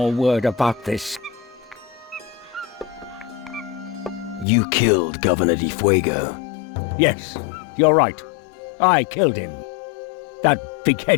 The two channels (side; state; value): right; drops out; at 4.5 s